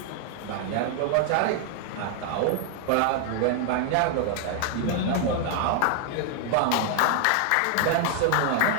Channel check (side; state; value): both; different; correlation 0.00